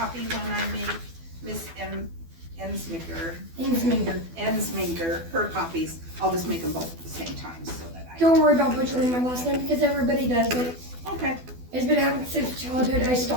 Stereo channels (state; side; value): late; left; 12 ms